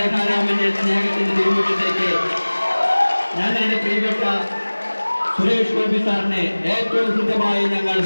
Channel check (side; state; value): both; inverted; correlation -1.00